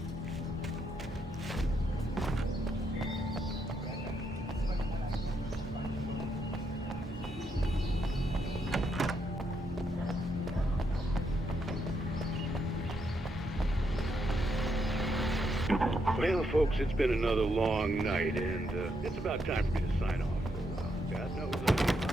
Well, folks, it's been another long night, and it's about time for me to sign off for a while. God knows I need my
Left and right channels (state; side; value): normal; both; correlation 0.78